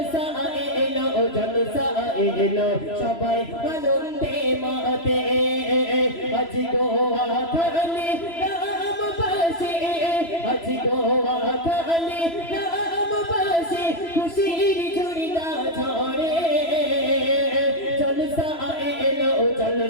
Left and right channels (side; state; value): right; late; 3.0 ms